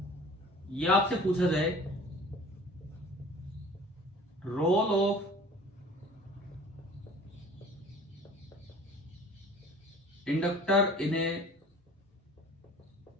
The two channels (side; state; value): both; normal; correlation 0.45